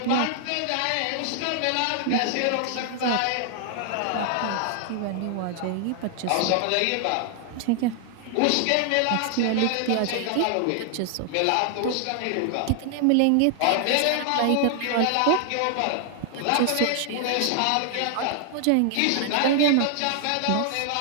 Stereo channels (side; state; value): both; different; correlation 0.00